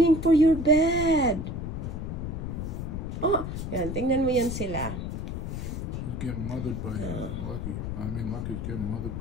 for your bed? Oh, yan, tingnan mo yan sila. He's getting mothered by Lucky. Lucky's getting mothered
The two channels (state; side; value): noise; left; rumble, 4 dB below the sound